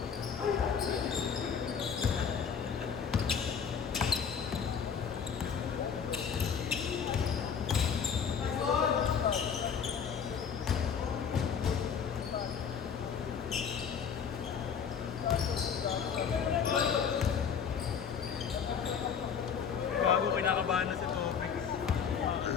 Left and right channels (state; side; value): quieter; right; 7.0 dB